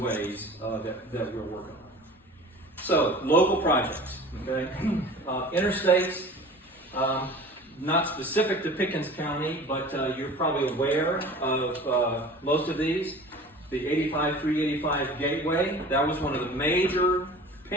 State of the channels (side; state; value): both; normal; correlation 0.41